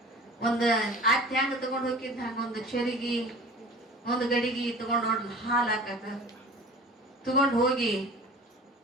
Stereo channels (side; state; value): both; normal; correlation 0.42